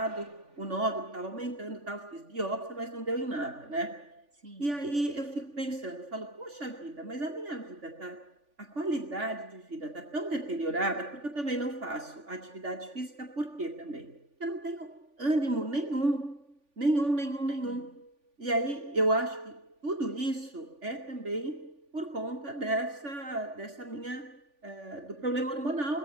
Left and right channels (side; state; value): left; late; 3.5 ms